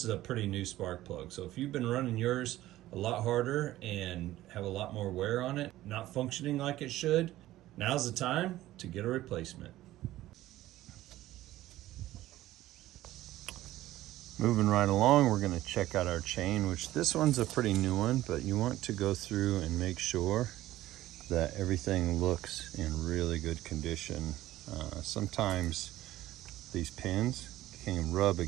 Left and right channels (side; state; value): left; quieter; 15.3 dB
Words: is a pretty new spark plug. So if you've been running yours a lot harder and have a lot more wear on it, not functioning like it should, now's the time to get a replacement. Moving right along, we're going to check out our chain, which this one's a pretty new one, but you want to go through and make sure that everything looks in really good condition. Sometimes these pins can rub